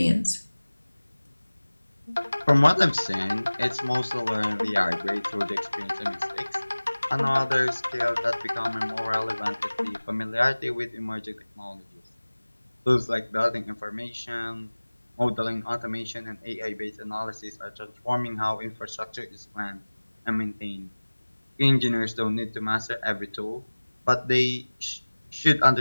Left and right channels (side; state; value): both; inverted; correlation -1.00